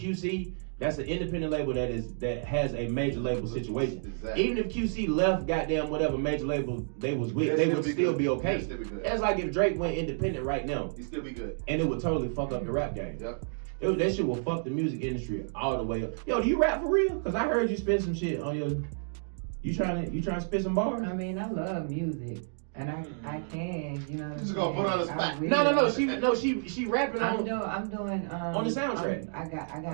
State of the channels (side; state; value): left; silent; digital silence